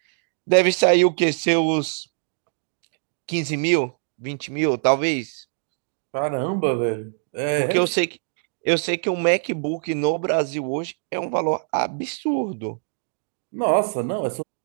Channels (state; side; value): silent; left; digital silence